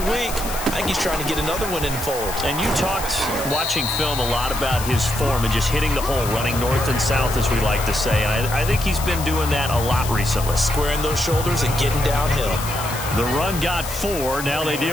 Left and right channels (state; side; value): noise; left; hiss, 9 dB below the sound